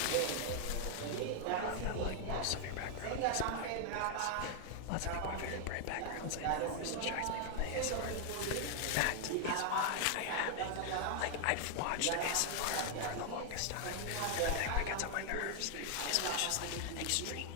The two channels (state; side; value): different; both; correlation 0.00